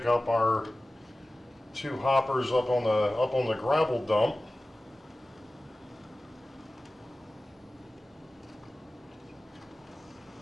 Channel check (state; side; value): normal; both; correlation 0.96